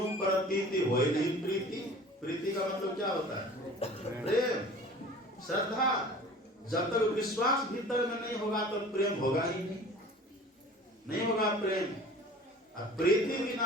प्रतीति होई नहीं प्रीति। प्रीति का मतलब क्या होता है? प्रेम, श्रद्धा। जब तक विश्वास भीतर में नहीं होगा तो प्रेम होगा ही नहीं होगा प्रेम। प्रीति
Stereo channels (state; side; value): normal; both; correlation 0.43